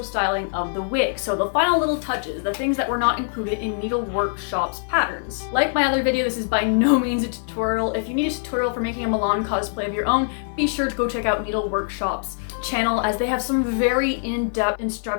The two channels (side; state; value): right; silent; digital silence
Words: styling of the wig. So the final little touches, the things that were not included in NDLWRKShop's patterns. Like my other video, this is by no means a tutorial. If you need a tutorial for making a Malon cosplay of your own, be sure to go check out NDLWRKShop's channel, as they have some very in-depth